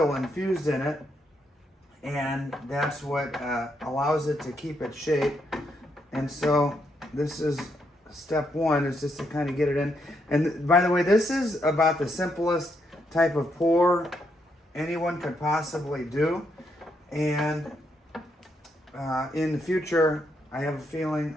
infused in it, and that's what allows it to keep its shape. And so this is step one, is just to kind of get it in. And by the way, this is about the simplest type of pour anyone could possibly do. And in the future, I have a feeling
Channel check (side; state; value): both; normal; correlation 0.78